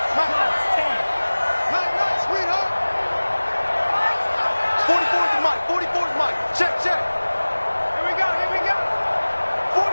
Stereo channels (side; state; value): both; inverted; correlation -1.00